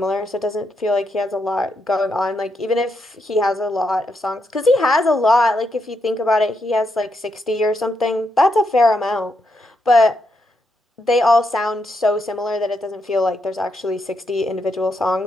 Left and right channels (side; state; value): both; normal; correlation 0.81